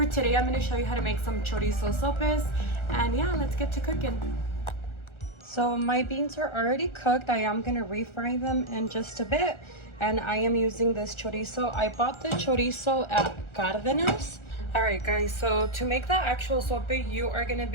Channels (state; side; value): late; right; 1.4 ms